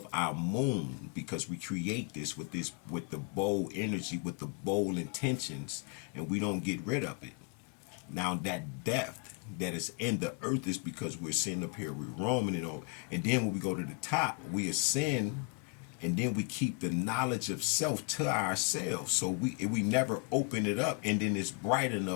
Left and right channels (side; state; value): right; quieter; 34.9 dB